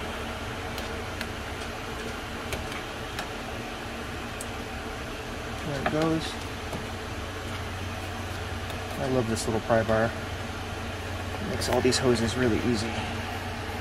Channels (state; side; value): identical; both; correlation 1.00